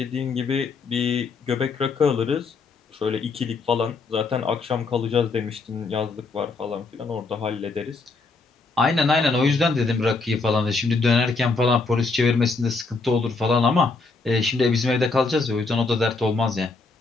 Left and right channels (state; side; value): quieter; right; 4.0 dB